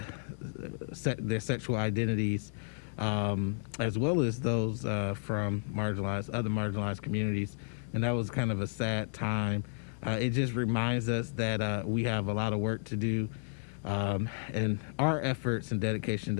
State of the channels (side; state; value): right; silent; digital silence